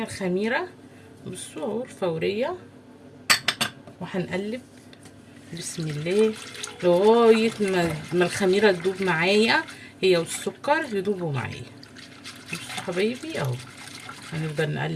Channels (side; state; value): both; identical; correlation 1.00